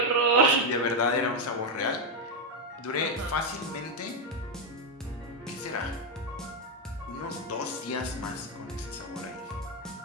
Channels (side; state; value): both; normal; correlation 0.03